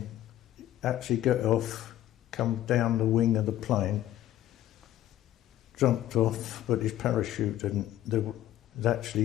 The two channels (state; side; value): quieter; right; 13.1 dB